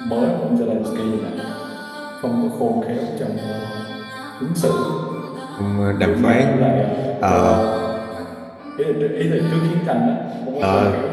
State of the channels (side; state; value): both; identical; correlation 1.00